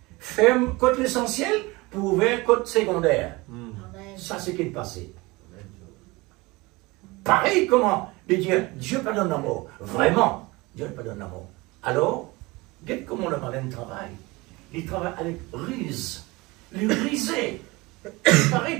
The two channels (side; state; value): left; quieter; 23.0 dB